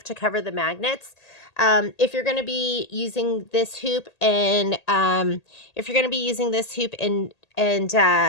to cover the magnets. If you're going to be using this hoop and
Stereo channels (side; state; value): right; late; 1.8 ms